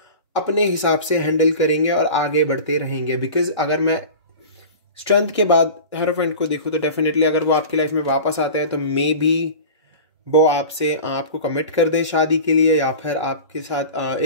अपने हिसाब से हैंडल करेंगे और आगे बढ़ते रहेंगे। बिकॉज अगर मैं स्ट्रेंथ के बाद हेरोफेंट को देखूँ तो डेफिनेटली अगर वो आपकी लाइफ में वापस आते हैं तो मे बी वो आपको कमिट कर दे शादी के लिए, या फिर आपके साथ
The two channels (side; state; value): both; inverted; correlation -0.35